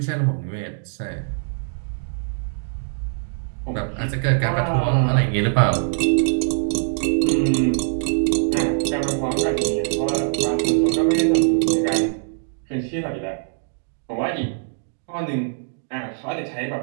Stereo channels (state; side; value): silent; left; digital silence